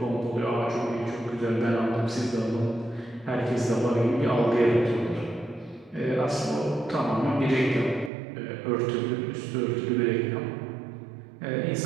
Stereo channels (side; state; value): left; drops out; at 8.1 s